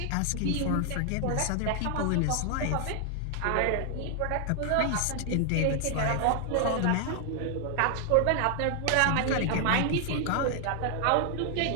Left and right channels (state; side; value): different; both; correlation 0.00